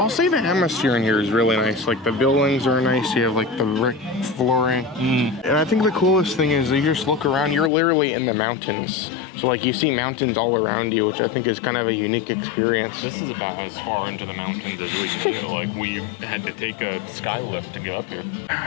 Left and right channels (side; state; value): right; drops out; at 7.7 s